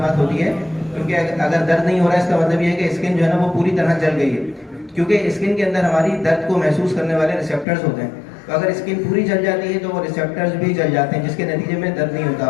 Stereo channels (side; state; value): right; drops out; at 7.7 s